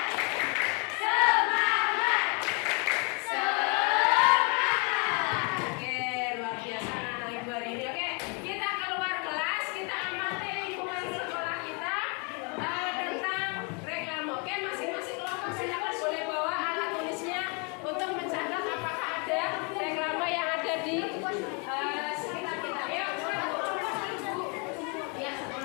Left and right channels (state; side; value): quieter; right; 34.2 dB